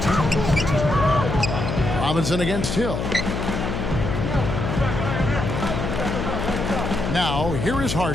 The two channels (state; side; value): noise; left; hum, 3 dB below the sound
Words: Robinson against Hill. Now, here is